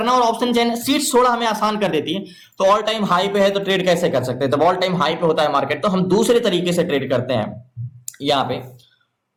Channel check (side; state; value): both; identical; correlation 1.00